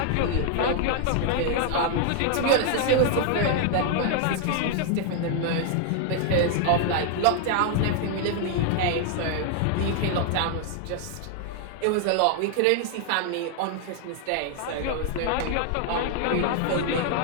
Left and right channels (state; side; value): different; both; correlation 0.00